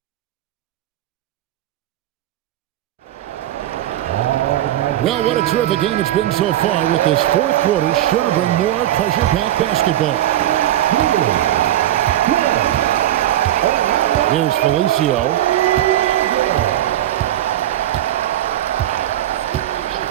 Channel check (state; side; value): quieter; left; 13.2 dB